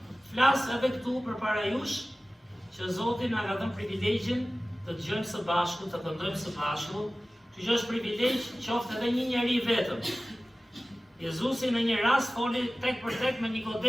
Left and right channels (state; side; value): normal; both; correlation 0.97